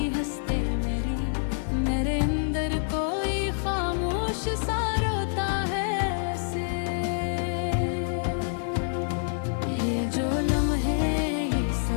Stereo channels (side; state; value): right; silent; 60 dB below the other